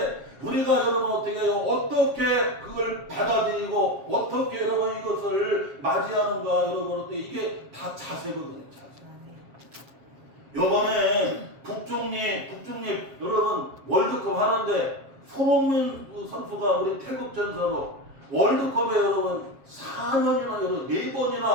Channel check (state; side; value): late; left; 7.4 ms